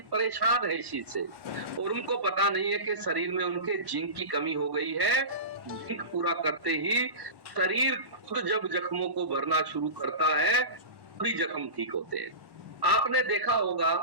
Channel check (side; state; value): left; late; 1.1 ms